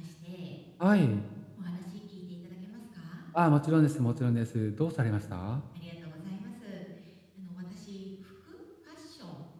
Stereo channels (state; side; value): identical; both; correlation 1.00